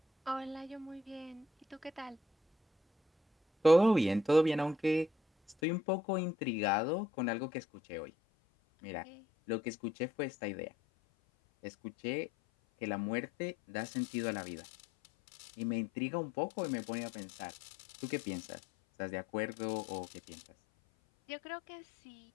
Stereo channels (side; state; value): right; drops out; at 5.6 s